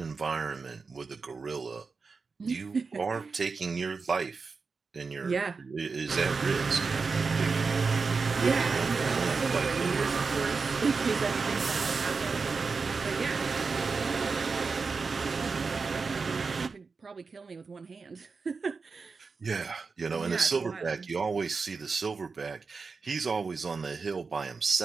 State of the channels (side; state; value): left; quieter; 4.7 dB